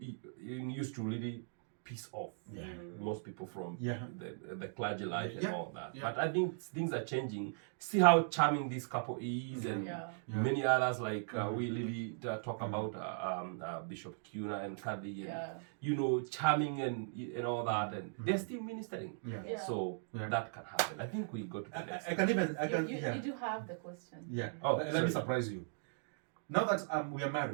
used to really piss off most people from the clergy life and all that. But I think things are changing. See how charming this couple is, and many others like we really talk about Bishop Kuna and Kathy, and charming and all that, and they're still ministering. So that can happen. I think we got to the next. You do have the question. Yeah. Oh, let me surprise you. Now that we are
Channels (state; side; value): silent; left; digital silence